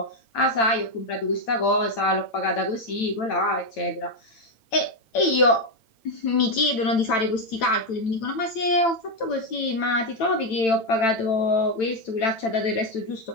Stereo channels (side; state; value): right; late; 8.9 ms